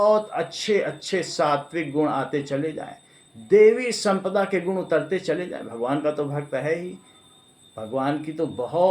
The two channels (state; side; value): identical; both; correlation 1.00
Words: अच्छे अच्छे सात्विक गुण आते चले जाएं, देवी संपदा के गुण उतरते चले जाएं, भगवान का तो भक्त है ही, भगवान की तो